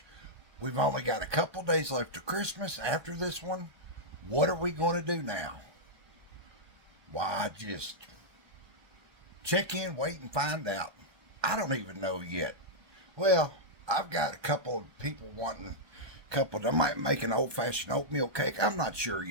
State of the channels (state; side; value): late; left; 1.2 ms